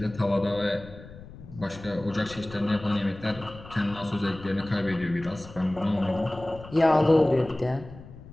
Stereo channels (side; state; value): left; noise; rumble, 17 dB below the sound